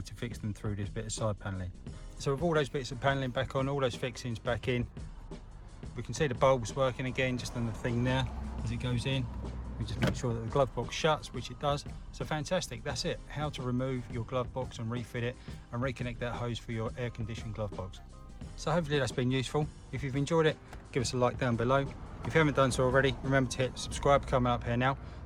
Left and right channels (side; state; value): both; identical; correlation 1.00